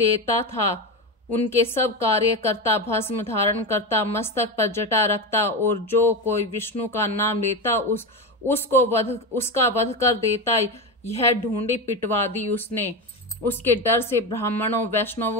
था। उनके सब कार्य करता, भस्म धारण करता, मस्तक पर जटा रखता और जो कोई विष्णु का नाम लेता उसका वध कर देता। यह ढूंढी पिटवा दी उसने। उसके डर से ब्राह्मणों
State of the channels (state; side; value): normal; both; correlation 0.17